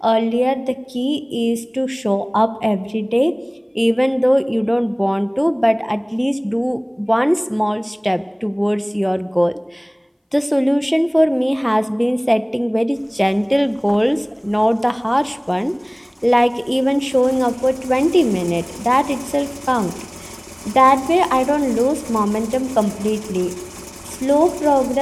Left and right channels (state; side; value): identical; both; correlation 1.00